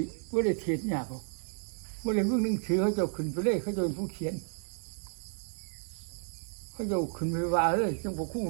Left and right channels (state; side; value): silent; left; 56 dB below the other